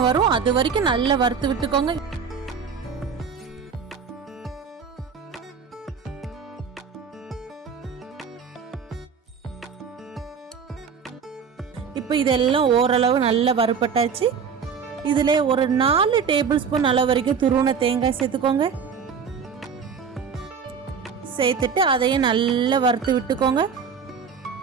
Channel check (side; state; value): left; quieter; 6.3 dB